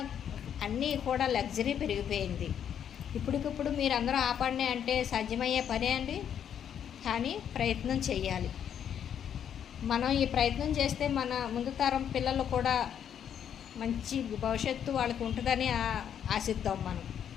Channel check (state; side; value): quieter; right; 8.9 dB